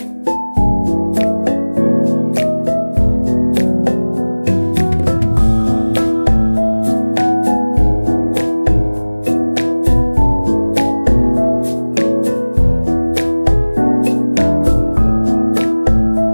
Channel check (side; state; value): both; inverted; correlation -1.00